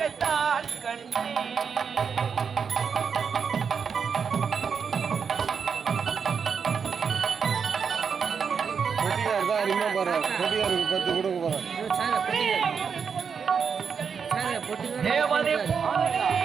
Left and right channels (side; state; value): left; quieter; 6.3 dB